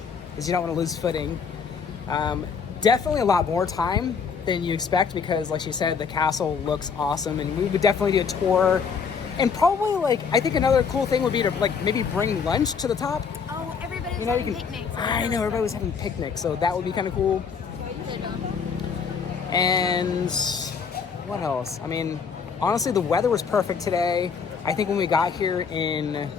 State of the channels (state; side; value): quieter; right; 6.0 dB